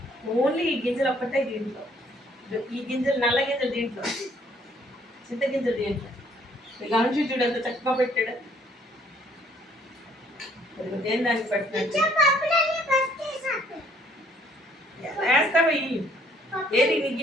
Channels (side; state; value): both; normal; correlation 0.63